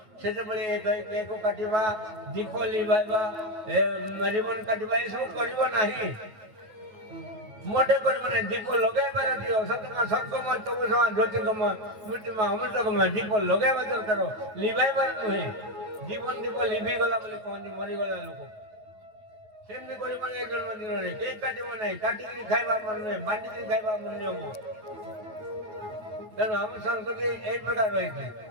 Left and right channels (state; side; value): late; left; 9.3 ms